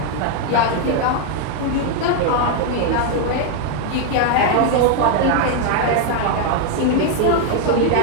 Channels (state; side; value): different; both; correlation 0.00